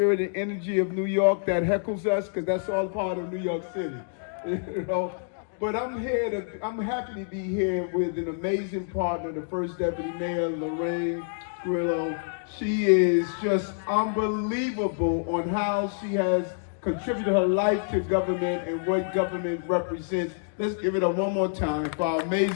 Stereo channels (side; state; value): right; silent; digital silence